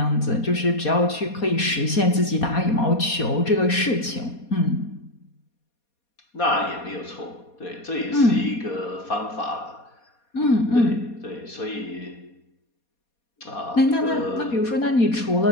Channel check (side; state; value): right; late; 4.2 ms